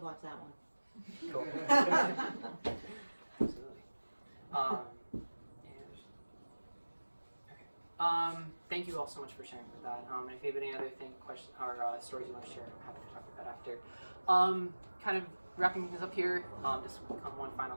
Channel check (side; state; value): both; inverted; correlation -1.00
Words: watch that one. Cool. Absolutely. Okay. Thank you all so much for sharing with that. And if you have any other questions or stories you want to share, I'm happy to talk about that after. Kind of wrapping things up here, just one final